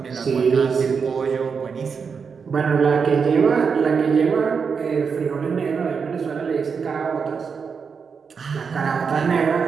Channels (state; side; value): quieter; left; 5.9 dB